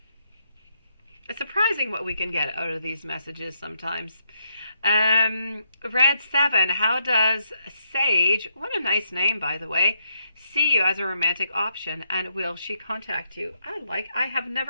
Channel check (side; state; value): both; inverted; correlation -0.77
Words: It's surprising what we can get out of these messages sometimes. Red 7, how does Sage, what a nice name by the way, see you as a romantic option, and will she contact you? I have